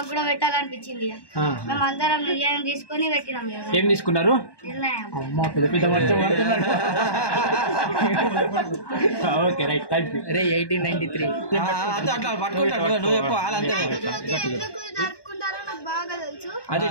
కూడా పెట్టాలనిపించింది. మేము అందరం నిర్ణయం తీసుకొని పెట్టినాం. ఏం తీసుకున్నారు? నిర్ణయం. Okay right, thank you. 1893 జరుపుకుంటారో నాకు బాగా తెలుసు. అదే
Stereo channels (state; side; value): late; right; 1.2 ms